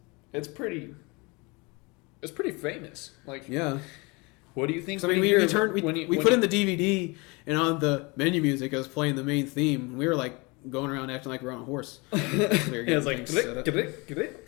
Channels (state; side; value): quieter; right; 27.2 dB